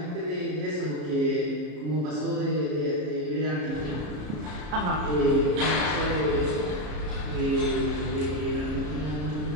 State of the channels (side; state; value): left; late; 33 ms